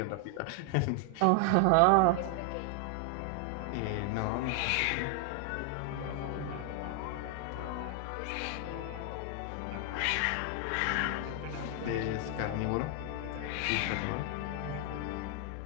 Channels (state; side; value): different; both; correlation 0.00